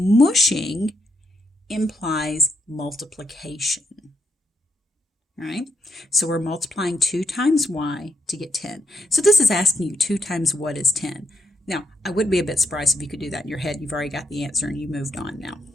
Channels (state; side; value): normal; both; correlation 0.78